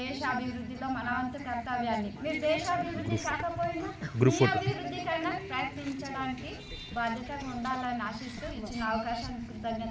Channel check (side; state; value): both; identical; correlation 1.00